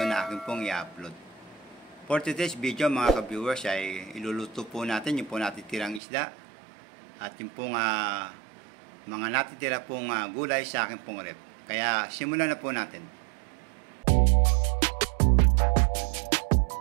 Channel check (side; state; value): left; drops out; at 6.0 s